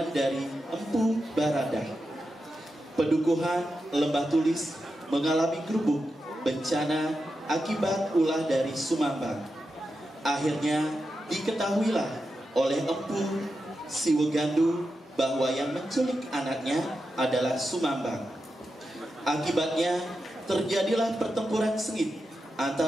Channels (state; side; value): normal; both; correlation 0.89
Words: dari Empu Baradah. Pedukuhan Lembah Tulis mengalami gerubuk bencana akibat ulah dari Sumambang. Akhirnya diketahuilah oleh Empu Siwegandu bahwa yang menculik anaknya adalah Sumambang. Akibatnya terjadilah pertempuran sengit